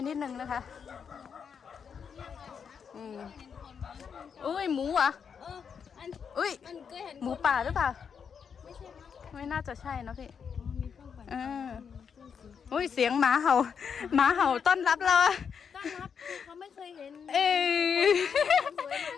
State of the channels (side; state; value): right; quieter; 6.8 dB